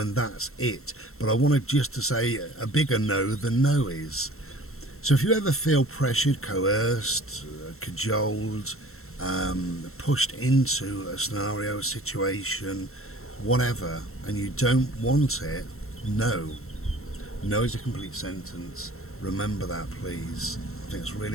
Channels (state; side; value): late; right; 0.62 ms